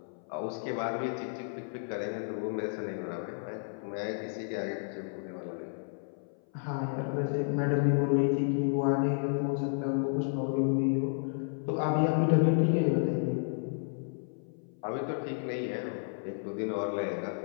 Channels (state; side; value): silent; right; 56 dB below the other